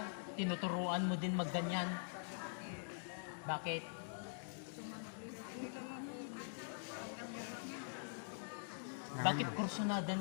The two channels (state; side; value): silent; right; digital silence